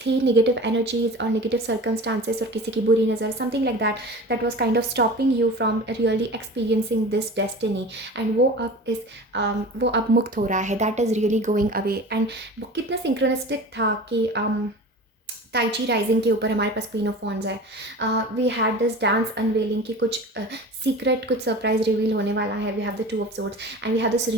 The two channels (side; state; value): both; normal; correlation 0.36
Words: थी, नेगेटिव एनर्जीज और नेगेटिव सर्कमस्टांसेस और किसी की बुरी नज़र, something like that, that was kind of stopping you from really experiencing this destiny. And वो अब मुक्त हो रहा है. That is really going away. And वो कितना सिंक्रोनिस्टिक था कि ताइची राइजिंग के ऊपर हमारे पास क्वीन ऑफ वॉन्ड्स है. We had this dance unveiling की कुछ सीक्रेट, कुछ सरप्राइज रिवील होने वाला है. We have the 2 of swords and we have this